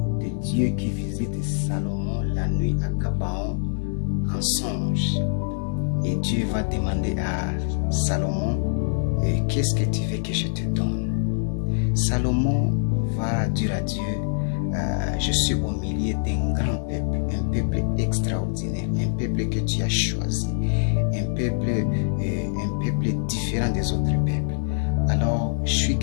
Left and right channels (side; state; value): right; silent; digital silence